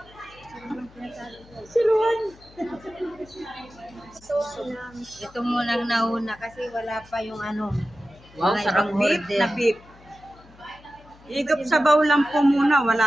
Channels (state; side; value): noise; left; hum, 24 dB below the sound